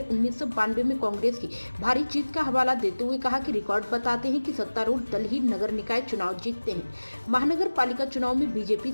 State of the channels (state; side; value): inverted; both; correlation -1.00